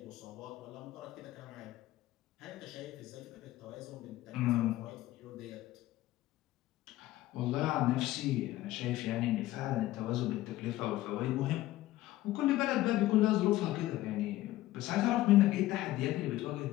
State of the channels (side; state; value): right; quieter; 15.9 dB